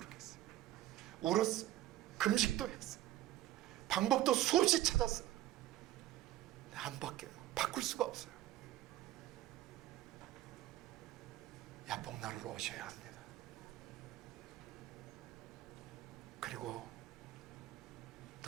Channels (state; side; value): quieter; left; 14.6 dB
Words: 울었어요. 금식도 했어요. 방법도 수없이 찾았어요. 안 바뀌어요. 바꿀 수가 없어요. 야뽕나루로 오셔야 합니다. 그리고